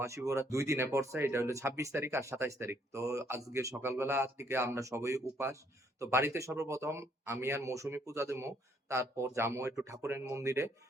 2 দিনে পড়ছে, এটা হলো 26 তারিখ আর 27 তারিখ। তো আজকে সকালবেলা থেকে আমরা সবাই উপাস। তো বাড়িতে সর্বপ্রথম আমি আর মৌসুমী পূজা দেবো, তারপর যাবো একটু ঠাকুরের মন্দিরে।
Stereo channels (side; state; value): both; normal; correlation 0.68